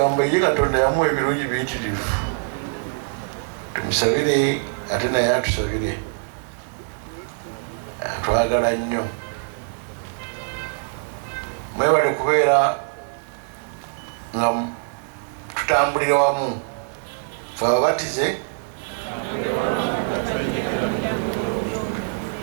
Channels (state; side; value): silent; left; digital silence